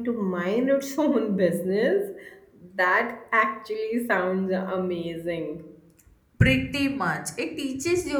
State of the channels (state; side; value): identical; both; correlation 1.00